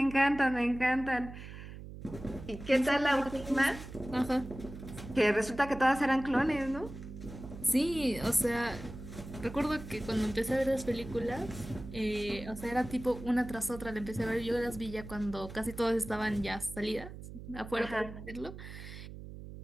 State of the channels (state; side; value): noise; right; hum, 12 dB below the sound